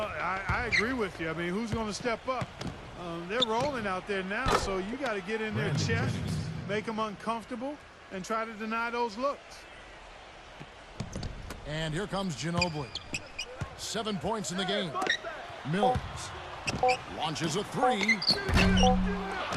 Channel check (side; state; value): both; identical; correlation 1.00